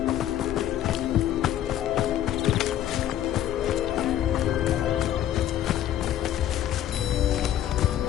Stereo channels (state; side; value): quieter; right; 11.6 dB